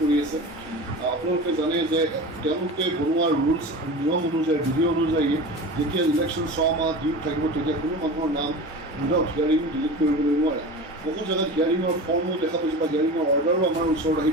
আছে। আপোনালোকে জানে যে তেওঁলোকে বনোৱা ৰুলছ নিয়ম অনুযায়ী, বিধি অনুযায়ী যেতিয়া ইলেকশ্যন 6 মাহ ডিউ থাকিব তেতিয়া কোনো মানুহৰ নাম উইদাউট হিয়াৰিং ডিলিট কৰিবলৈ নোৱাৰে। বহু জেগাত হিয়াৰিঙৰ ফৰ্মো দেখা পাইছোঁ বা হিয়াৰিঙৰ অৰ্ডাৰো আমাৰ ওচৰত আহি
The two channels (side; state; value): both; normal; correlation 0.32